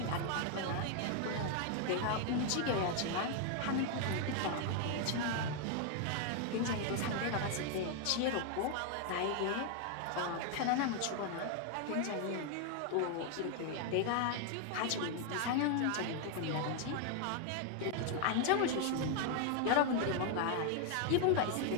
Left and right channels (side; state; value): both; different; correlation 0.00